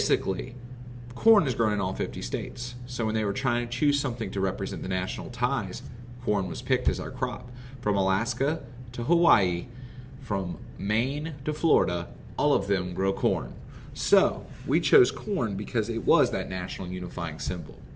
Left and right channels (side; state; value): both; identical; correlation 1.00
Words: corn is grown in all 50 states. So when they were trying to choose something to represent the national ties, corn was picked as our crop. From Alaska to Hawaii, from Maine to Florida, all of them grow corn. So we chose corn because it was that national unifying symbol.